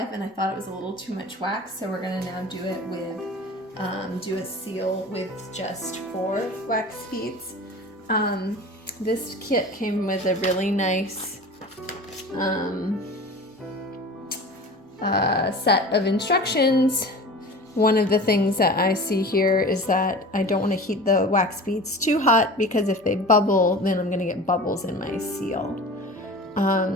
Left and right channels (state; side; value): normal; both; correlation 0.37